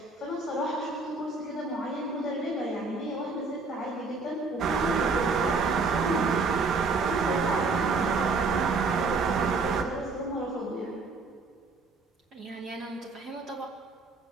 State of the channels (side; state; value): left; quieter; 3.9 dB